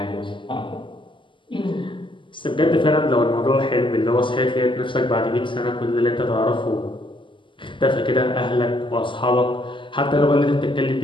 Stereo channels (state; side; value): late; right; 0.24 ms